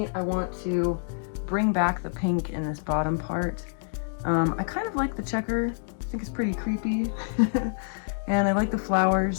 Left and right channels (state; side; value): silent; right; digital silence